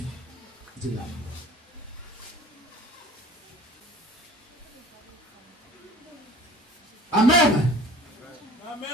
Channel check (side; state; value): both; normal; correlation 0.45